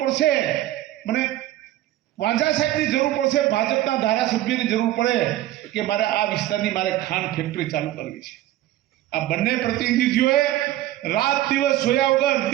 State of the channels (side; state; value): left; quieter; 14.4 dB